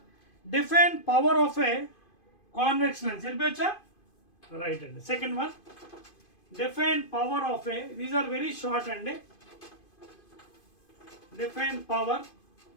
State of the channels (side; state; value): right; late; 2.5 ms